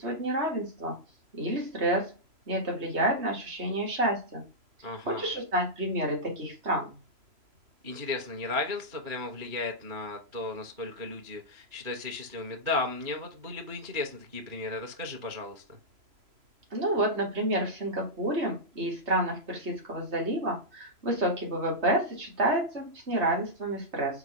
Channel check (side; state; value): left; late; 3.0 ms